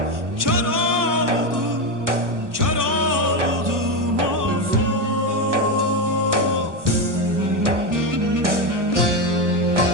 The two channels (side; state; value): left; late; 1.0 ms